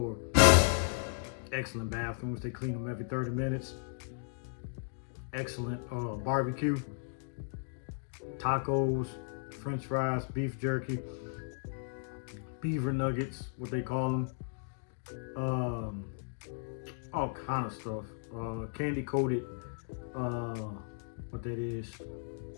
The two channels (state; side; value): silent; right; digital silence